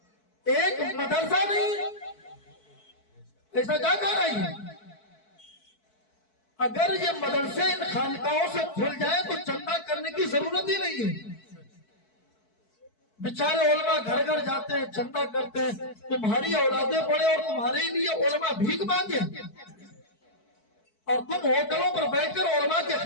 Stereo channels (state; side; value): late; right; 4.6 ms